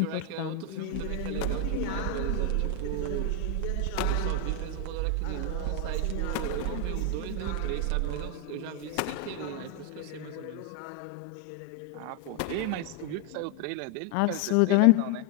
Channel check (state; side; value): different; both; correlation 0.01